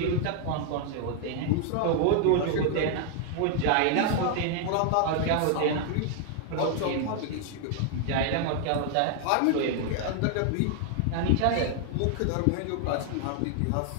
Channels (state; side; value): different; both; correlation 0.00